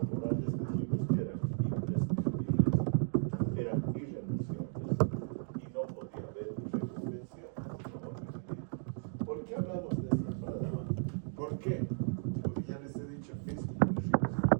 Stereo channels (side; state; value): left; silent; digital silence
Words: dijimos que eran imprescindibles, eran irrenunciables y no podía haber reconvención. ¿Por qué hablamos de esta palabra? ¿Por qué? Porque ya les he dicho, es muy